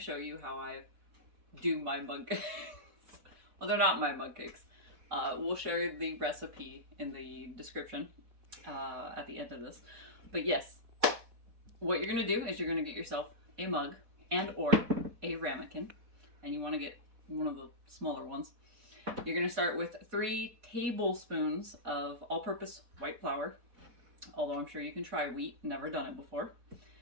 you how I do my mug cakes. Well, they're not my mug cakes. We'll share the recipe in the description at the end of this. But yes, what you're going to do is you're going to get yourself a mug and or a ramekin, and you want to get one of the smaller ones. You're going to start with 3 tablespoons of all-purpose white flour. Although I'm sure you can try wheat, never done it before.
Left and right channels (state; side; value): late; left; 4.1 ms